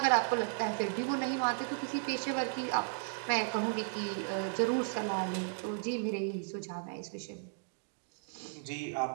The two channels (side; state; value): left; silent; digital silence